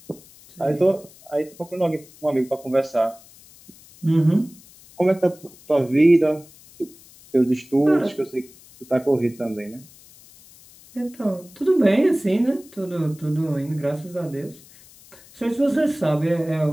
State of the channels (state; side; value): noise; left; hiss, 24 dB below the sound